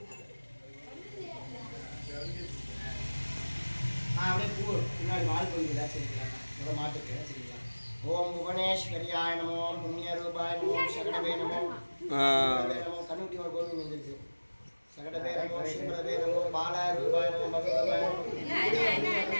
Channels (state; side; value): inverted; both; correlation -1.00